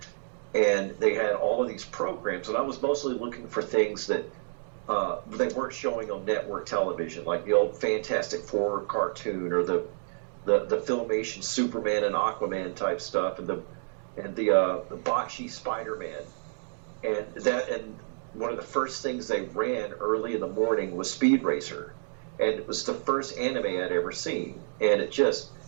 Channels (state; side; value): silent; left; digital silence